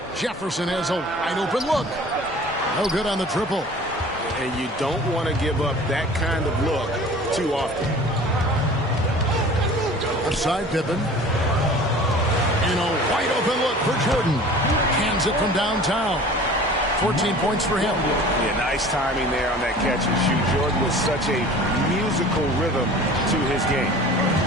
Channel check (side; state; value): both; normal; correlation 0.43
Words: Jefferson has a wide open look. No good on the triple. And you don't want to give up that kind of look too often. Outside Pippen. And a wide open look for Jordan. Cans it from downtown. 14 points for him. Yeah, nice timing there on that catch and shoot. Jordan with such a musical rhythm to his game.